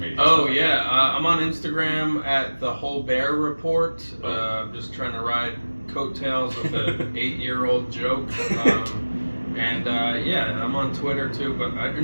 I'm on Instagram at the Holbert Report. I'm just trying to ride coattails with an 8-year-old joke. I'm on Twitter too, but I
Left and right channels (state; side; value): inverted; both; correlation -1.00